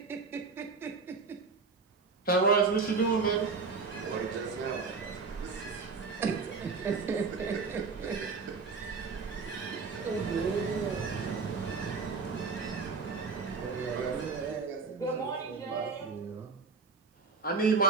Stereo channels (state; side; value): quieter; left; 4.7 dB